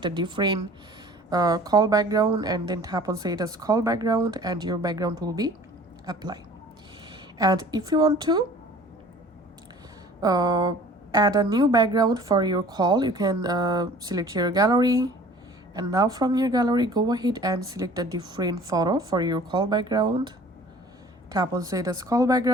a different call background and then tap on set as call background, and your background will be applied. And if you want to add a new background for your call, you can select your gallery, and now from your gallery go ahead and select a different photo for your call background, tap on set as call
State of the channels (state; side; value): normal; both; correlation 0.48